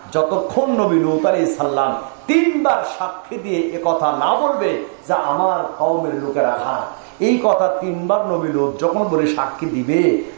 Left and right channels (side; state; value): left; silent; digital silence